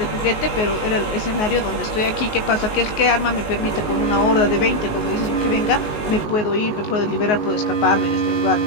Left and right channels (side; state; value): right; late; 19 ms